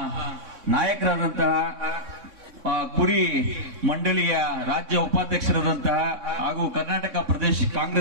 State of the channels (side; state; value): left; late; 3.6 ms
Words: ನಾಯಕರಾದಂತಹ, ಕುರಿ ಮಂಡಳಿಯ ರಾಜ್ಯ ಉಪಾಧ್ಯಕ್ಷರಾದಂತಹ ಹಾಗೂ ಕರ್ನಾಟಕ ಪ್ರದೇಶ